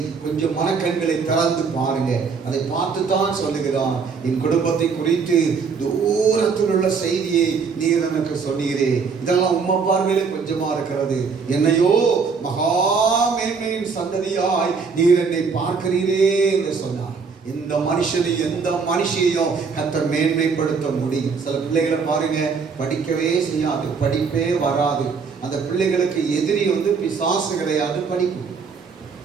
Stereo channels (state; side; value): quieter; left; 5.3 dB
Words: கொஞ்சம் மனக்கண்களை திறந்து பாருங்க. அதை பார்த்து தான் சொல்லுகிறான். என் குடும்பத்தை குறித்து தூரத்தில் உள்ள செய்தியை நீர் எனக்கு சொன்னீரே, இதெல்லாம் உம்மை பார்வையிலே கொஞ்சமா இருக்கிறது. என்னையோ மகா மேன்மையின் சந்ததியாய் நீர் என்னை பார்க்கிறீரே என்று சொன்னார். இந்த மனுஷனை எந்த மனுஷையும் கர்த்தர் மேன்மைப்படுத்த முடியும். சில பிள்ளைகளை பாருங்க, படிக்கவே செய்யாது, படிப்பே வராது. அந்த பிள்ளைகளுக்கு எதிரி பிசாசு கிடையாது, படிப்பு.